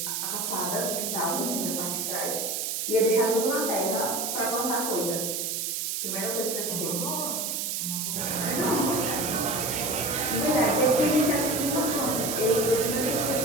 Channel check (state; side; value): noise; right; hiss, 1 dB below the sound